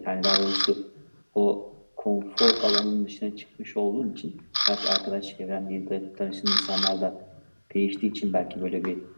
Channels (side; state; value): both; inverted; correlation -1.00